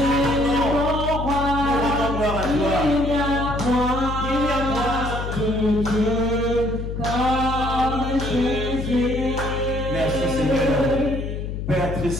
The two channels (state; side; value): noise; left; hum, 5 dB below the sound